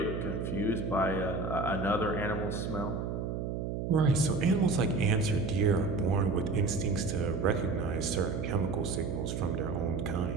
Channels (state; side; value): noise; right; hum, 3 dB below the sound